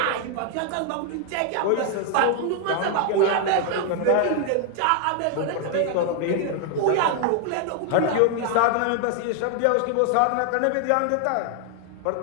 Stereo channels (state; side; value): different; both; correlation 0.00